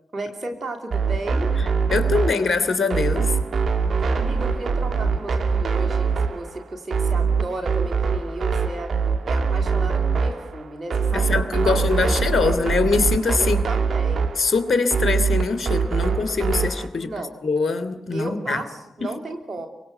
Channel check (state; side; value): normal; both; correlation 0.79